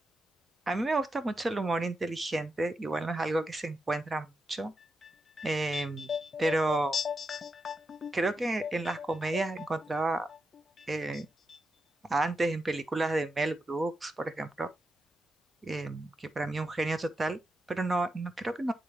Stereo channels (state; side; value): normal; both; correlation 0.86